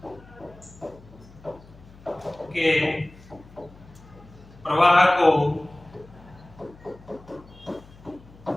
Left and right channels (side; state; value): left; noise; hum, 22 dB below the sound